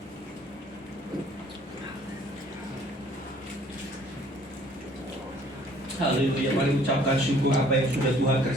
Haleluya. Mari ucapkan syukur apa yang sudah Tuhan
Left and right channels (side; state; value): both; normal; correlation 0.57